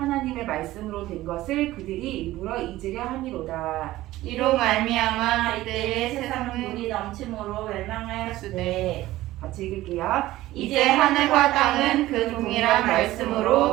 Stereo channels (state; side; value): quieter; left; 16.2 dB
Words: 말씀으로 된 것을 그들이 일부러 잊으려 함이로다. 이로 말미암아 이때의 세상은 물이 넘침으로 멸망하였으되 같이 읽을게요. 이제 하늘과 땅은 그 동일한